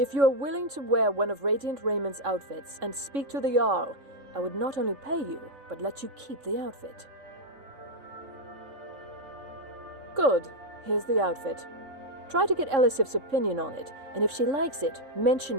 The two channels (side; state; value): left; late; 3.7 ms